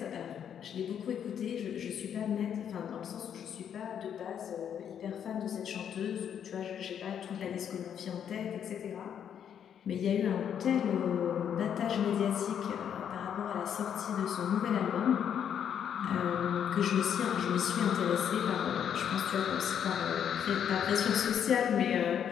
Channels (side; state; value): right; quieter; 8.7 dB